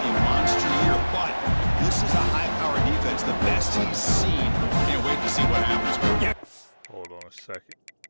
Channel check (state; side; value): inverted; both; correlation -1.00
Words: a monster year, but this is a high-powered defense, the best he's seen. Can't wait to see what happens. Hold on a second.